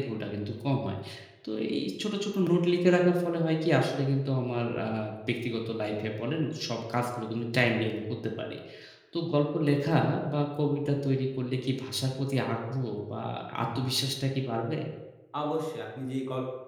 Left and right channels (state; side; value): identical; both; correlation 1.00